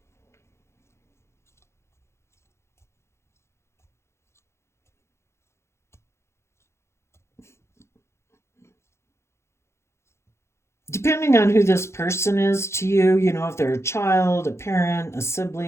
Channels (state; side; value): late; right; 0.13 ms